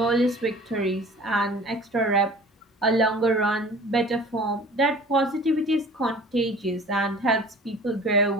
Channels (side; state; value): both; normal; correlation 0.45